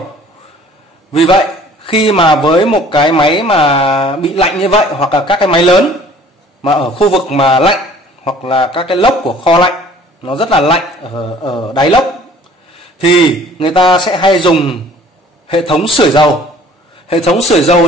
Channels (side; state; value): both; normal; correlation 0.52